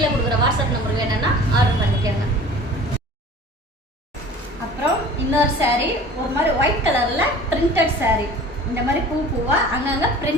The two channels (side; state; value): both; normal; correlation 0.44